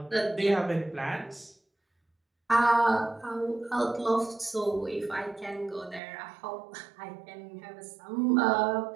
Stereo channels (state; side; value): drops out; left; at 6.0 s